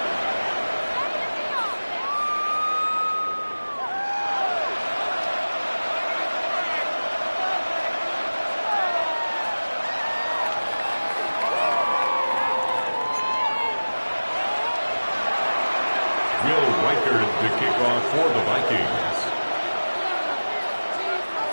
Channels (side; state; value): both; inverted; correlation -1.00